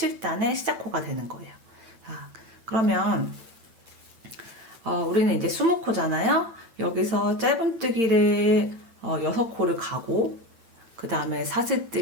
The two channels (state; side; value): late; left; 8.8 ms